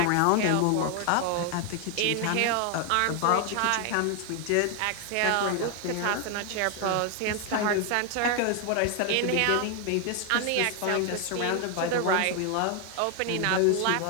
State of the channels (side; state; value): both; different; correlation 0.01